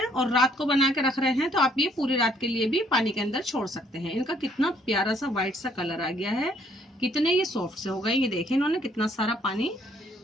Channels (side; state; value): both; normal; correlation 0.65